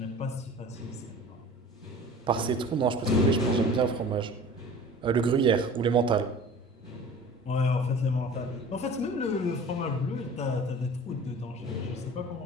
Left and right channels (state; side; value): normal; both; correlation 0.42